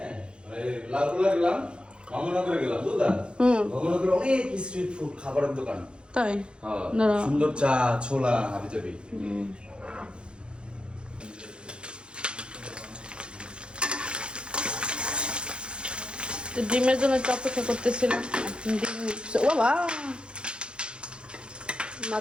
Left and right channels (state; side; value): late; left; 0.054 ms